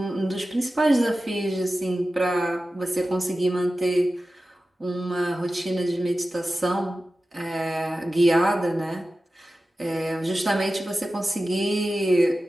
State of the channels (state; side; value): normal; both; correlation 0.94